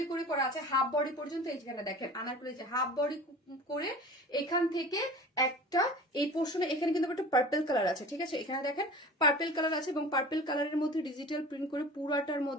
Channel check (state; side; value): normal; both; correlation 0.39